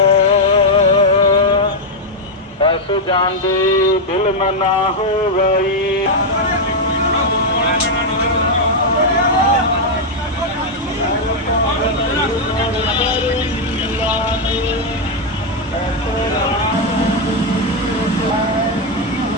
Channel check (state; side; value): normal; both; correlation 0.00